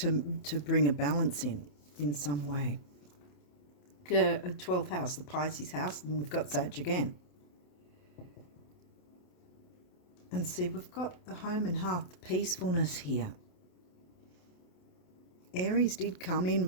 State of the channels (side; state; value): right; late; 28 ms